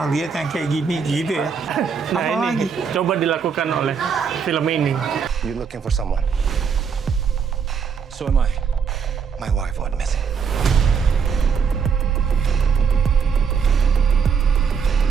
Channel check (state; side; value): quieter; left; 6.3 dB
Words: lihat yang kayak gini gitu ya. Nah Apalagi? ini coba dilakukan oleh film ini. You're looking for someone. So am I. My wife went missing.